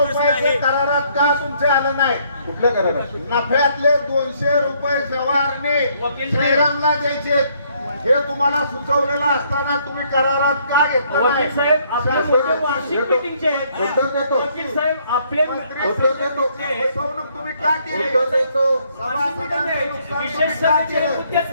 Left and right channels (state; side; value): inverted; both; correlation -0.67